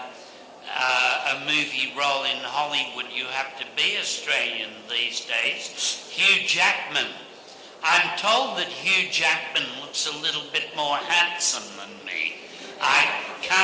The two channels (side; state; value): both; identical; correlation 1.00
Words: a movie role in Hollywood, you have to be Australian these days. Hugh Jackman. I'm told that Hugh Jackman looks a little bit more handsome than me. I